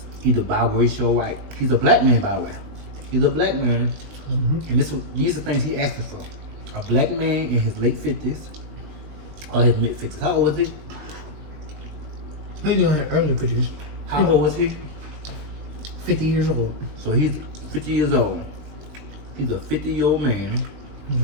either biracial or white. He's a black man, by the way. He's a black man. And these are things he asking for. A black man in his late 50s or his mid 50s. How old is he? He's in his early 50s. How old was he? 50 years old. So he's 50 years old. He's a 50-year-old man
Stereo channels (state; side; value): late; left; 20 ms